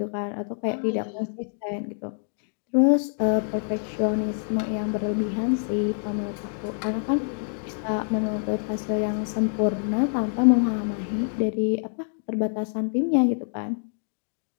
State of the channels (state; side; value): silent; right; digital silence